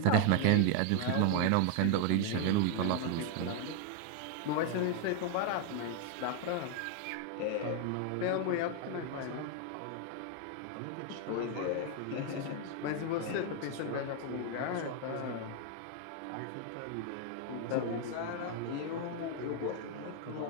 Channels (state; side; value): different; both; correlation 0.00